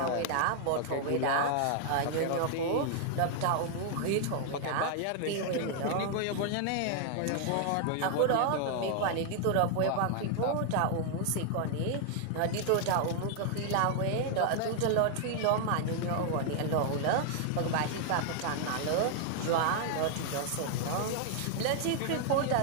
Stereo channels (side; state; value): both; different; correlation 0.00